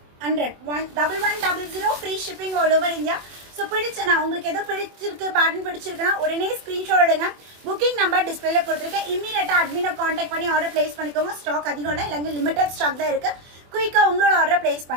1100 free shipping all over India. So பிடிச்சனா உங்களுக்கு எதோ பிடிச்சிருக்கு பேட்டர்ன் பிடிச்சிருக்குன்னா உடனே ஸ்க்ரீன்ஷாட் எடுங்க. புக்கிங் நம்பர் டிஸ்பிளேல கொடுத்துருக்கேன். இமீடியட்டா அட்மினை கான்டாக்ட் பண்ணி ஆர்டர் பிளேஸ் பண்ணிக்கோங்க. ஸ்டாக் அதிகம் இல்லை, இல்லைங்க லிமிடெட் ஸ்டாக் தான் இருக்கு. குயிக்காக உங்களோட ஆர்டர் பிளேஸ்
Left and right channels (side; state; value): left; late; 24 ms